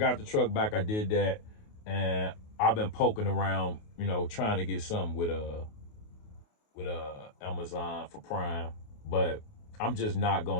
the truck back. I did that, and I've been poking around, trying to get something with Amazon for Prime, but I'm just not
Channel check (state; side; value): late; right; 28 ms